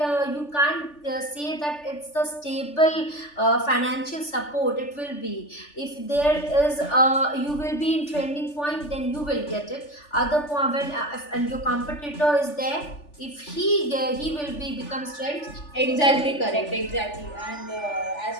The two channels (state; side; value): late; right; 3.4 ms